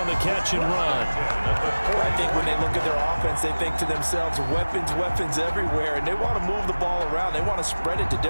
the catch and run. I think when they look at their offense, they think to themselves, weapons everywhere, and they want to move the ball around. They want to spread it to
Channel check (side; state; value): both; inverted; correlation -1.00